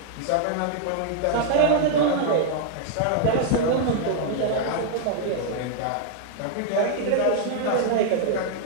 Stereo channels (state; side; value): different; both; correlation 0.00